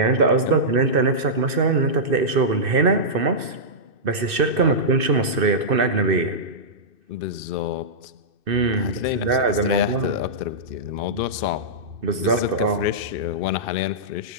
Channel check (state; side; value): late; left; 2.6 ms